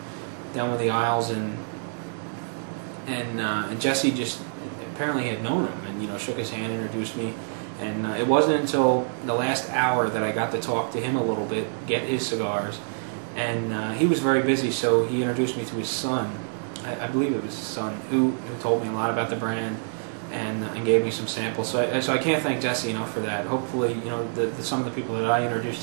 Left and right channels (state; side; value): silent; left; 57 dB below the other